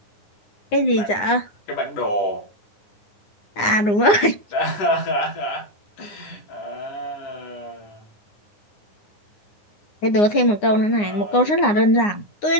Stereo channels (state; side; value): late; right; 9.7 ms